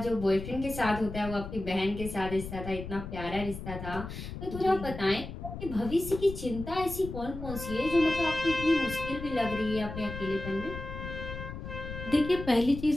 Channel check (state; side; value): noise; left; rumble, 9 dB below the sound